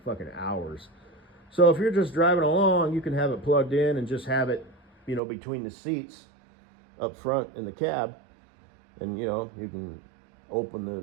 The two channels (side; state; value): left; drops out; at 5.2 s